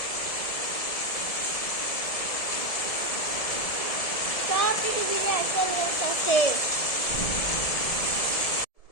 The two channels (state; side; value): late; right; 1.7 ms